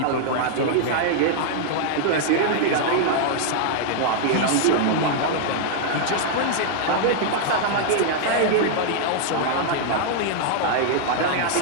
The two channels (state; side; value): different; both; correlation -0.01